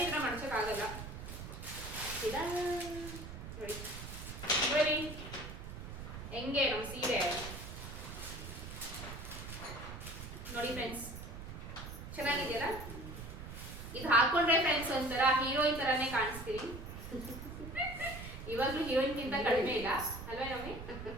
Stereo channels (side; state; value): right; noise; rumble, 9 dB below the sound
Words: ಈ ತರ ಮಡ್ಚಕ್ ಆಗಲ್ಲ. ನೋಡಿ ಬರೀ ಹೆಂಗೆ ನಮ್ ಸೀರೆ ನೋಡಿ ಫ್ರೆಂಡ್ಸ್, ಚೆನ್ನಾಗಿದೆಯಲ್ಲ? ಇದು ಹಾಕೊಂಡ್ರೆ ಫ್ರೆಂಡ್ಸ್ ಒಂಥರ ಹೀರೋಯಿನ್ ತರಾನೇ ಕಾಣಿಸ್ತೀವಿ. ಇವಾಗ್ಲೂ ಹೀರೋಯಿನ್ ಗಿಂತ ಕಡಿಮೆ ಇಲ್ಲ ಅಲ್ವೇ ನಮ್ಮಿ?